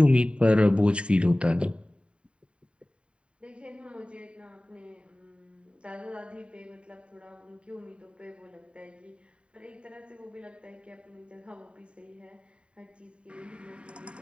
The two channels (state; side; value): late; left; 0.056 ms